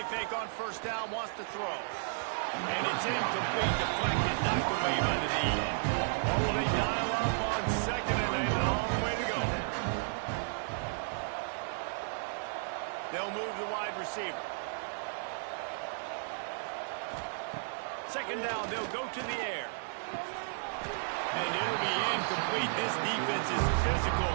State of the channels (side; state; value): left; silent; digital silence